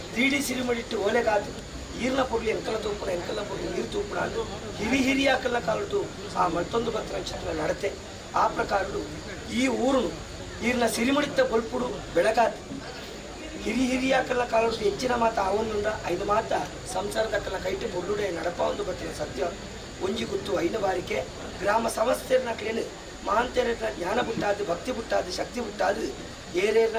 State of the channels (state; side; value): identical; both; correlation 1.00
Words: ತೀಡಿ ಸಿರಿಮಡಿಟ್ಟು ಓಲೆಗಾತು ಈರ್ನ ಪೊರ್ಲಿ ಎಂಕಲ ತೂಪುಣ ಎಂಕಲ ಪೊರ್ಲಿ ನೀರು ತೂಪುಣ ಅದು ಹಿರಿಯಾಕಲ್ಲ ಕಾಲದು ಆ ಮತ್ತೊಂದು ಭಕ್ತ ನಕ್ಷತ್ರ ನಡತೆ ಆ ಪ್ರಕಾರಗಳು ಈ ಊರು ಈರ್ನ ಸಿರಿಮಡಿತ ಬಲ್ಪುಡು ಬೆಳಗಾತು ಹಿರಿಯಾಕಲ್ಲ ಕಾಲದ್ದು ಹೆಚ್ಚಿನ ಮಾತ ಅವನುಂಡ ಐದು ಮಾತ ಸಂಸಾರದಕ್ಕಲ್ಲ ಕೈಟು ಬೊಳ್ಳುಡೆ ನಡಪ ಒಂದು ಬತ್ತಿನ ಸತ್ಯ ಒಂಜಿ ಗುತ್ತು ಐದು ಬಾರಿಕೆ ಗ್ರಾಮ ಸಮಸ್ಯೆನ ಕ್ಲೇನು ಮಹಾಂತೇರನ ಜ್ಞಾನ ಬಿಟ್ಟಾದು ಭಕ್ತಿ ಬಿಟ್ಟಾದು ಶಕ್ತಿ ಬಿಟ್ಟಾದು ಏರೇರ್ನ